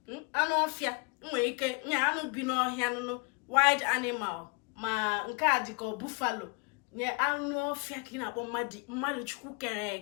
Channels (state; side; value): quieter; right; 33.0 dB